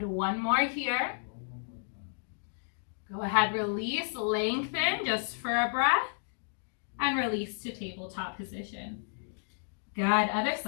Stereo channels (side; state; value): right; silent; digital silence